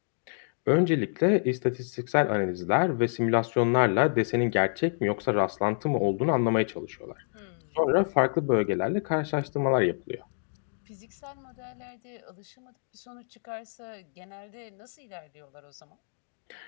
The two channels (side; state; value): right; silent; digital silence